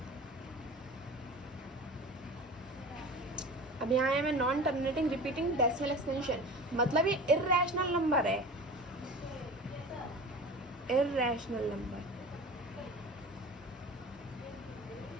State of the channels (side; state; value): both; normal; correlation 0.36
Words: अब यहाँ है में non terminating repeating decimal expansion, मतलब ये इर्रेशनल नंबर है, इर्रेशनल नंबर।